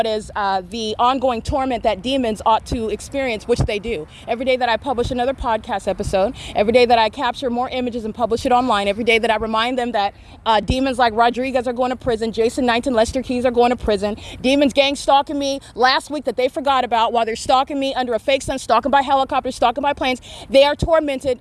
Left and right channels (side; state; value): both; identical; correlation 1.00